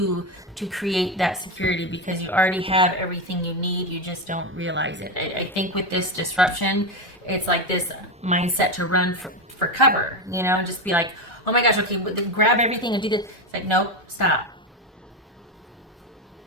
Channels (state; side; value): normal; both; correlation 0.14